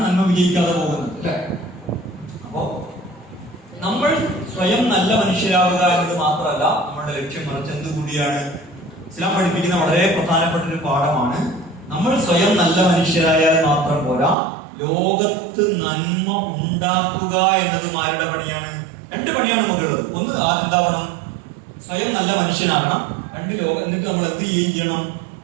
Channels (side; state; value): left; drops out; at 14.4 s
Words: നന്മ വിജയിക്കാതെ പോകുന്നത് അല്ലെ? അപ്പോ നമ്മൾ സ്വയം നല്ല മനുഷ്യരാവുക എന്നത് മാത്രമല്ല നമ്മളുടെ ലക്ഷ്യം, മറിച്ച് എന്തുകൂടിയാണ്? ഇസ്ലാം പഠിപ്പിക്കുന്ന വളരെ പ്രധാനപ്പെട്ട ഒരു പാഠമാണ്. നമ്മൾ സ്വയം നല്ല മനുഷ്യരായാൽ മാത്രം പോരാ, ലോകത്ത് നന്മ ഉണ്ടാക്കുക എന്നതും ആരുടെ പണിയാണ്? രണ്ട് പണിയാണ് നമുക്കുള്ളത്. ഒന്ന്, എന്താവണം? സ്വയം നല്ല മനുഷ്യനാകണം. രണ്ട്, എന്നിട്ട് നമ്മൾ എന്ത് ചെയ്യണം?